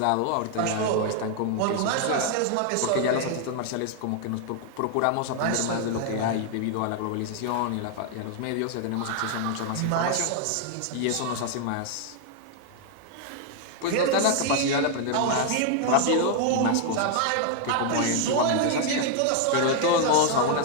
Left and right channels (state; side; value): different; both; correlation 0.00